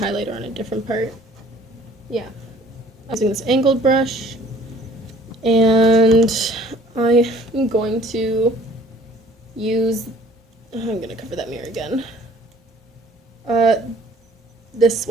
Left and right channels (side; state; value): both; normal; correlation 0.54